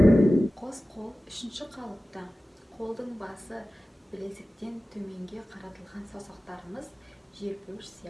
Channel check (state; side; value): normal; both; correlation 0.96